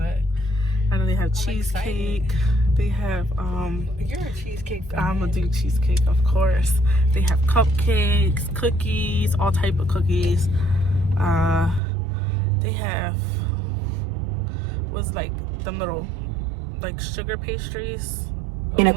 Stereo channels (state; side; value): drops out; left; at 11.8 s